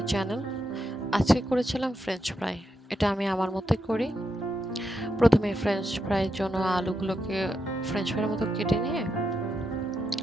channel. আজকে করেছিলাম ফ্রেঞ্চ ফ্রাই। এটা আমি আমার মতোই করি। প্রথমে ফ্রেঞ্চ ফ্রাইয়ের জন্য আলুগুলোকে ফ্রেঞ্চ ফ্রাইয়ের মতো কেটে নিয়ে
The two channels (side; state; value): both; normal; correlation 0.84